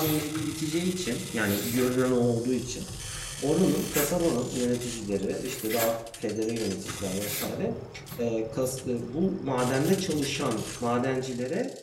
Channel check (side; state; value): both; identical; correlation 1.00